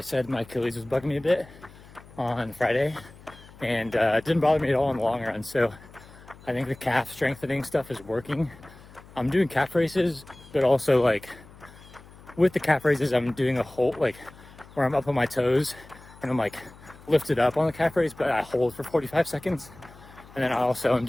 said my Achilles was bugging me a bit on Friday, and it didn't bother me at all in the long run. So I think the calf strengthening stuff is working. I'm doing calf races, but also like with the calf races, I'm doing a hold, like where I'm up on my toes and I'm like lifted up on the calf raise, but I hold for 45 seconds. And then I also am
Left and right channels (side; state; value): left; noise; hum, 21 dB below the sound